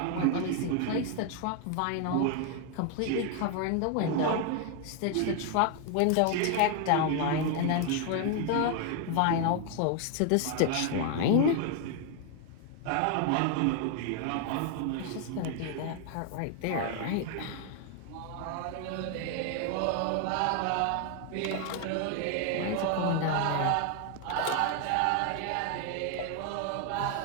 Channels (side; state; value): both; different; correlation 0.01